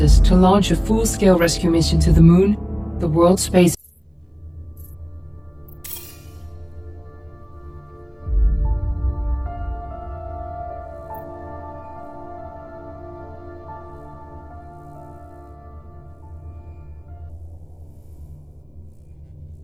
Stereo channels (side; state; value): both; identical; correlation 1.00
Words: to launch a full-scale rescue mission to the Moon, the World Space